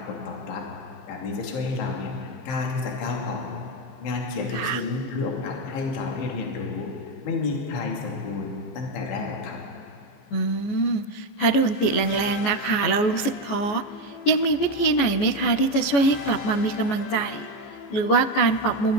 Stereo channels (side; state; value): right; late; 14 ms